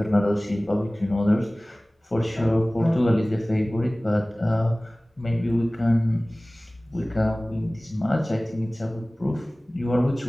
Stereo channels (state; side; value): normal; both; correlation 0.98